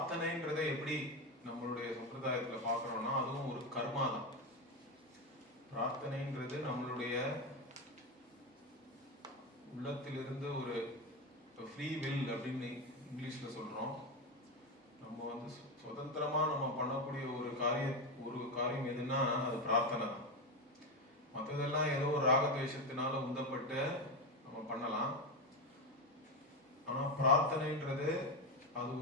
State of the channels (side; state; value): both; normal; correlation 0.13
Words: எப்படி நம்மளுடைய சம்பிரதாயத்துல பார்க்கறோம்னா, அதுவும் ஒரு கர்மா தான். பிரார்த்தனைன்றது நம்மளுடைய உள்ளத்திலிருந்து ஒரு ஃப்ரீ வில் அப்படின்னு இங்கிலீஷ்ல சொல்றோம். நம்ம சுதந்திரமா நம்ம பண்ணக்கூடிய ஒரு காரியம் எதுன்னா அது பிரார்த்தனை தான். மற்றதெல்லாம் ஏதோ ஒரு ராகத்வேஷத்தினால உந்தப்பட்டு நம்ம பண்ணலாம். ஆனா பிரார்த்தனைன்றது அது